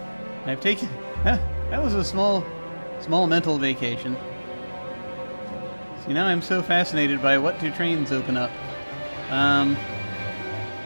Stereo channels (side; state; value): both; inverted; correlation -1.00